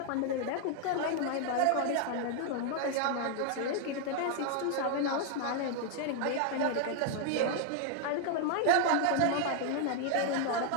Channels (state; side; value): different; both; correlation 0.00